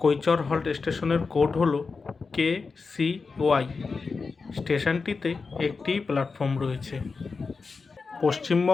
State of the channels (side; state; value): right; quieter; 4.6 dB